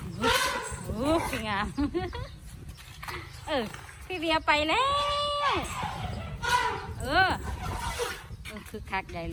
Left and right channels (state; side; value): identical; both; correlation 1.00